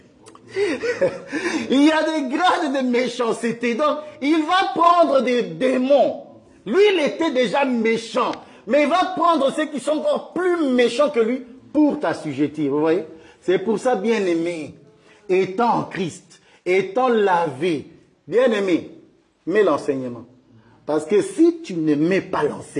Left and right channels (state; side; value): identical; both; correlation 1.00